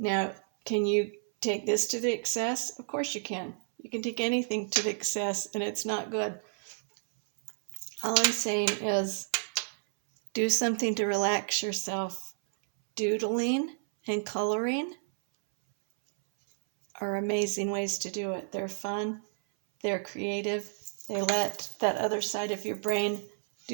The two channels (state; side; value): silent; left; 57 dB below the other